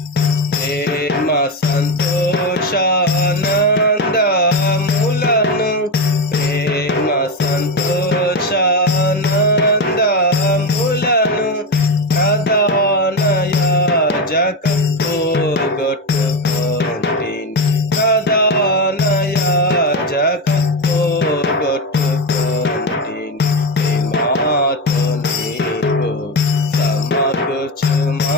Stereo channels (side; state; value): both; normal; correlation 0.15